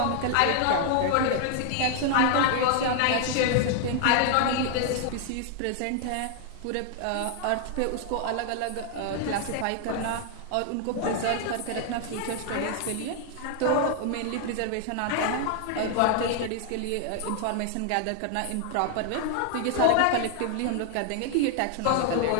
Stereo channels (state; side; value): different; both; correlation 0.00